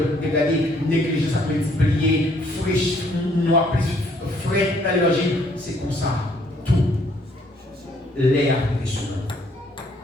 dégradé, négligence à multiplier, fraîche, noir, frais dans l'énergie, c'est comme ça. Tout. L'air est sur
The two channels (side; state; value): both; normal; correlation 0.65